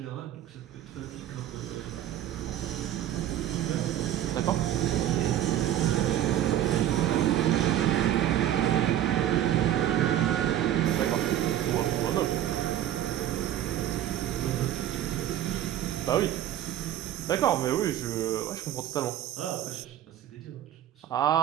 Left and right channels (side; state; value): left; quieter; 11.8 dB